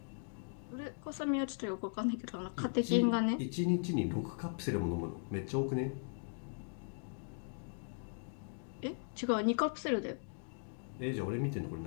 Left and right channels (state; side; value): silent; right; digital silence